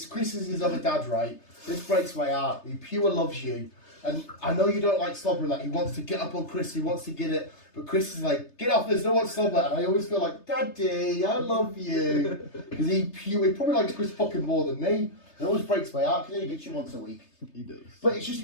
Chris is his other dad, right? This breaks my heart. He pure loves you. And I know you don't like slobbering, like he wants to get up on Chris, he wants to get it, but Chris is like, get off, there's no one slobber. And I always feel like, Daddy, I love you. Because he probably likes Chris fucking more than me. It always breaks my heart because he gets you once a week. He does. But it's just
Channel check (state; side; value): late; right; 3.3 ms